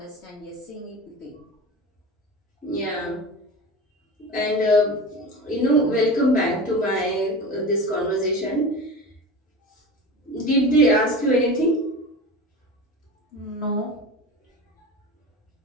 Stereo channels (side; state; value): both; normal; correlation 0.30